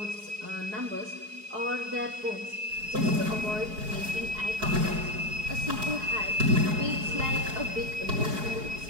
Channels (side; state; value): left; late; 4.7 ms